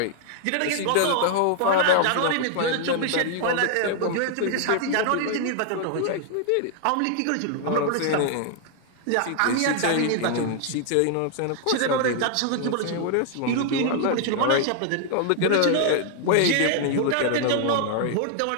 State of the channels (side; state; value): both; different; correlation 0.00